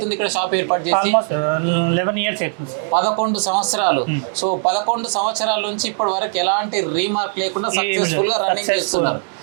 ఇక్కడ షాప్ ఏర్పాటు చేసి? 11 years అవుతుంది. 11 సంవత్సరాలు. సో 11 సంవత్సరాల నుంచి ఇప్పటి వరకు ఎలాంటి రీమార్క్ లేకుండా సక్సెస్ఫుల్ గా రన్నింగ్ చేస్తున్నారు.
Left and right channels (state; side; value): silent; left; 64 dB below the other